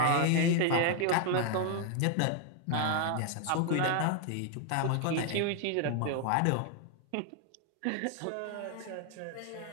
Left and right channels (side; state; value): both; different; correlation 0.00